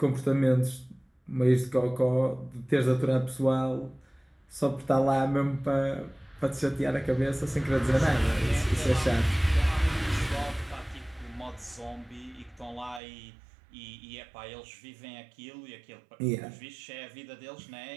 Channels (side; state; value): left; drops out; at 13.0 s